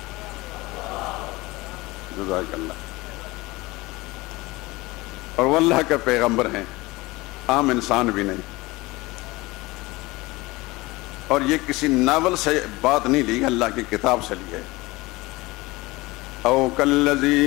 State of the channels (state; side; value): quieter; right; 21.5 dB